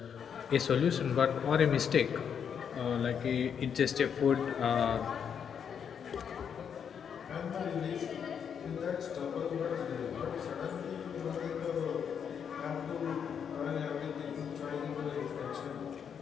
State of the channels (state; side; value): quieter; right; 7.6 dB